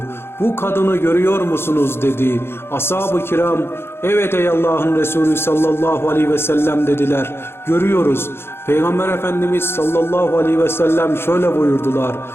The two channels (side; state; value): right; late; 0.11 ms